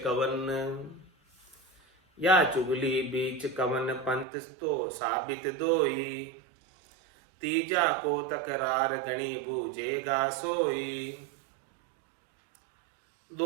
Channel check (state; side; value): drops out; left; at 4.2 s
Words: कवन। या चुगली बीच कवन, पंथ तो साबित दोई। तीजा को तकरार गणी, बूझेगा सोई।